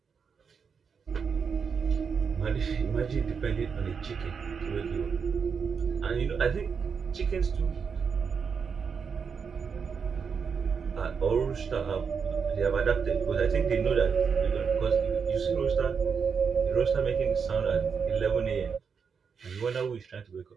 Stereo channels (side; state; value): left; quieter; 6.1 dB